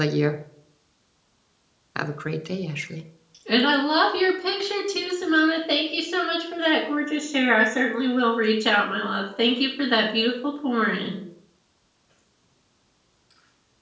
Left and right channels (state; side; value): identical; both; correlation 1.00